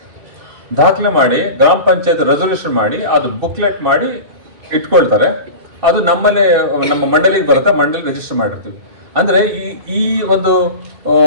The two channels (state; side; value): late; left; 2.6 ms